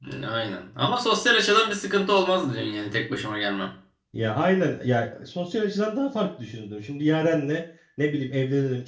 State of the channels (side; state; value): both; identical; correlation 1.00